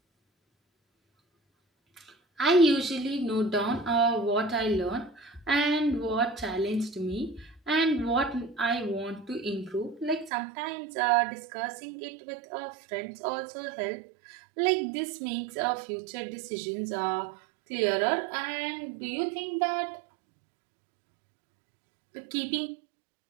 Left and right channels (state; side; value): drops out; left; at 10.3 s